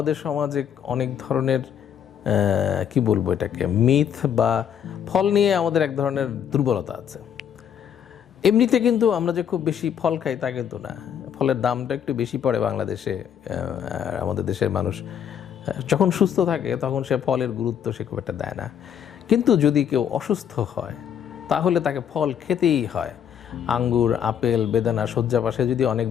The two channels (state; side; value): quieter; right; 8.7 dB